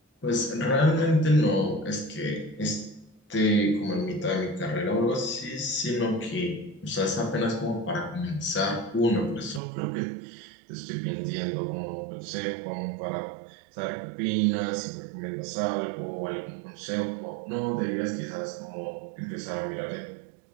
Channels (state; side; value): drops out; left; at 9.6 s